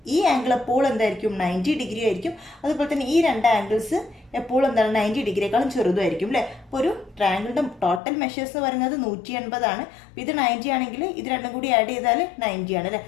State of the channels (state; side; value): drops out; right; at 8.0 s